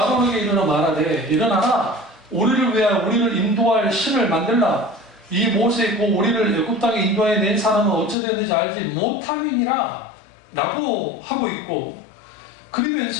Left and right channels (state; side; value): drops out; right; at 8.2 s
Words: 일어나 말하되 일어나라. 우리를 위하여 우리를 인도할 신을 만들라. 이 모세 곧 우리를 애굽 땅에 인도해 낸 사람은 어찌 되었는지 알지 못함이니라 라고 하고 있고,